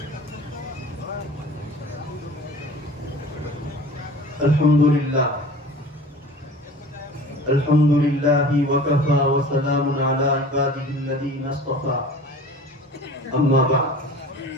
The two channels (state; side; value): normal; both; correlation 0.41